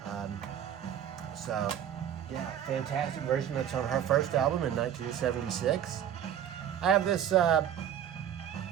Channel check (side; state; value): left; quieter; 9.7 dB